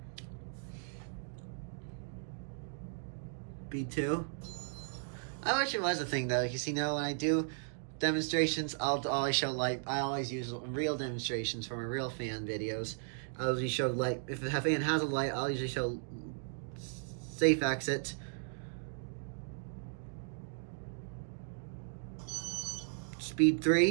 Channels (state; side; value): silent; left; digital silence